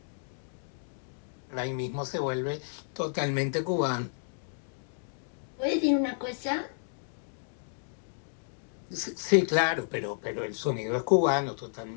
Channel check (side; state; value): right; silent; digital silence